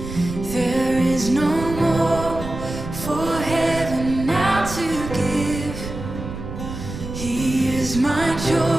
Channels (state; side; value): noise; right; rumble, 8 dB below the sound